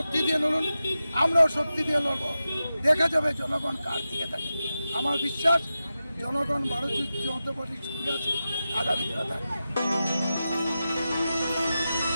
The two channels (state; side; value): inverted; both; correlation -0.92